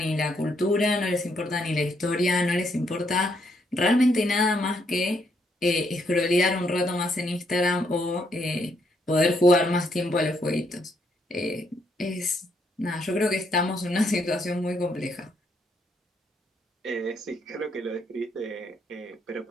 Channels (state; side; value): normal; both; correlation 0.74